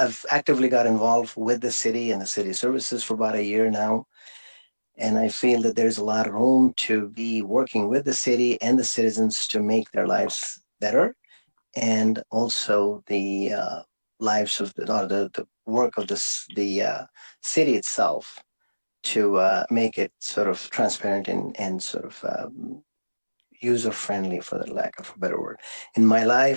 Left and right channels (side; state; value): both; inverted; correlation -1.00